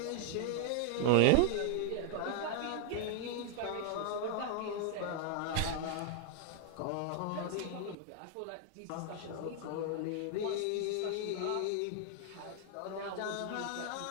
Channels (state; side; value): different; both; correlation 0.00